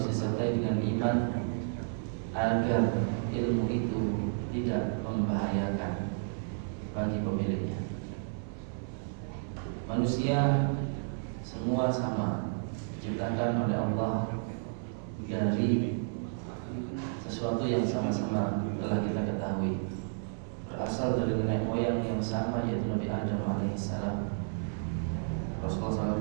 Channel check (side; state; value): left; silent; 57 dB below the other